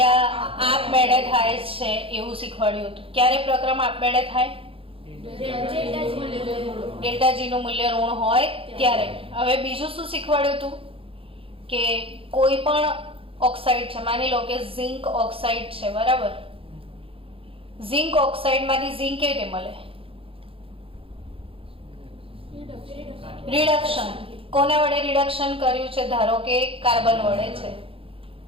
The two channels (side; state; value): left; late; 0.27 ms